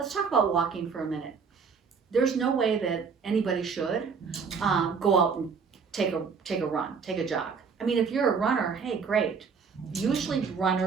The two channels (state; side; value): quieter; left; 5.7 dB